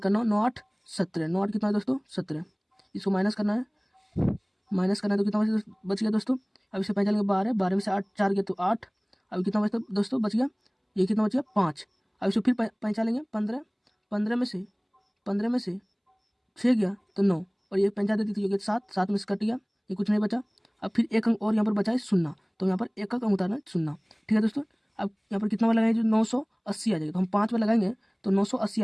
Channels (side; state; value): both; identical; correlation 1.00